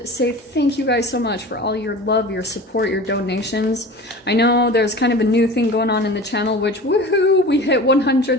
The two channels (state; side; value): normal; both; correlation 0.37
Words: to say thank you guys so much for all your love, your support, your donations. I know there's kind of a new thing going on in the channel, which, woohoo, we hit